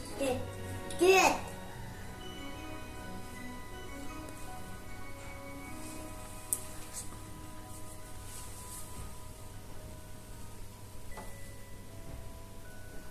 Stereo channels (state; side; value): identical; both; correlation 1.00